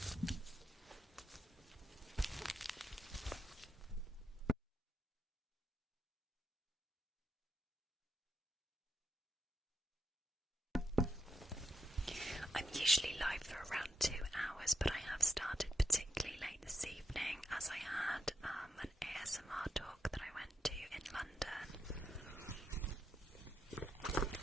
I'm usually live for around 2 hours, but I have started particularly late this evening as I had an ASMR talk that I went to in London.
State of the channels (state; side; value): normal; both; correlation 0.81